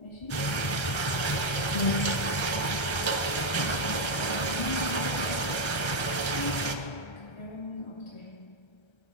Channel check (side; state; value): right; late; 1.3 ms